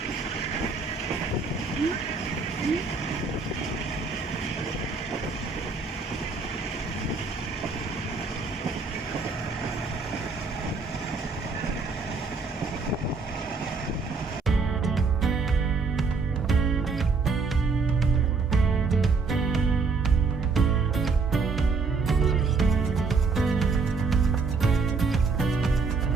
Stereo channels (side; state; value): left; quieter; 4.5 dB